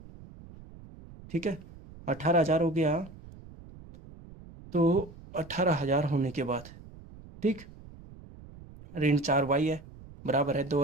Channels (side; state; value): right; noise; rumble, 19 dB below the sound